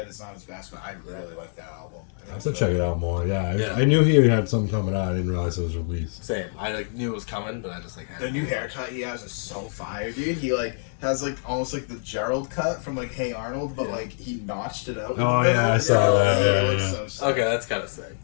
It's not his best, but I really like that album. I have to check it out more. Yeah, Yeah. I knew he had something coming out. I didn't realize it was released. Same. I like knew it was coming, but I just like The new haircut he has is so fire, dude. He like has like almost like the Gerald cut from like Hey Arnold, but like he notched it out. Oh, yeah, I saw that, It yeah, looks yeah. so sick. Okay, that's kind of sick.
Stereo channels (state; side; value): silent; right; 61 dB below the other